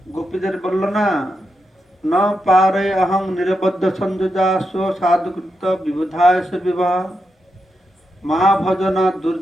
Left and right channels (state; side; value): normal; both; correlation 0.86